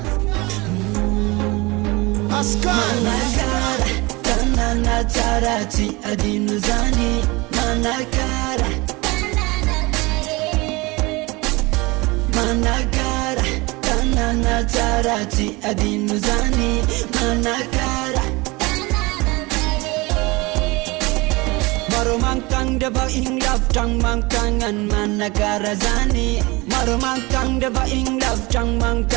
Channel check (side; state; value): left; quieter; 24.0 dB